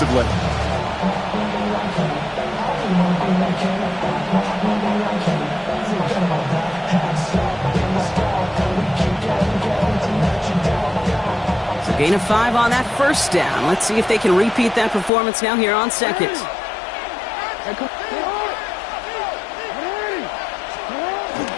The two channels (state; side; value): drops out; right; at 15.1 s